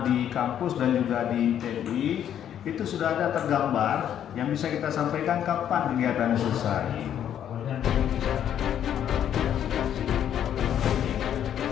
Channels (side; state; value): right; quieter; 9.9 dB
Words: di kampus dan juga di TNI itu sudah ada tergambar yang bisa kita sampaikan kapan kegiatan selesai.